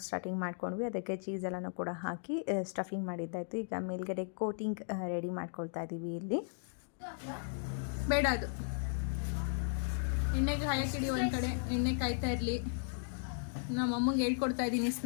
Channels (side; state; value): right; silent; digital silence